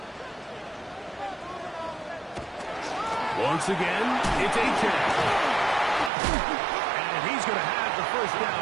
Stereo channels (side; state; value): left; drops out; at 6.1 s